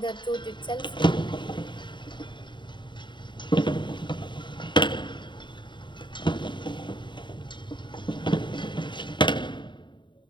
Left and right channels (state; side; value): late; right; 0.23 ms